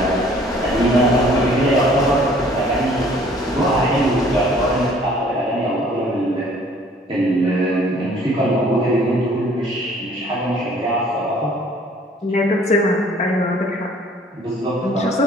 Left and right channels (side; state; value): both; normal; correlation 0.56